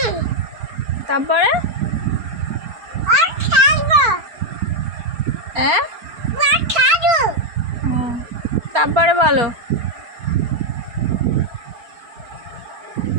তারপরে হ্যাঁ, তারপরে বলো।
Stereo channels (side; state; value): left; late; 4.4 ms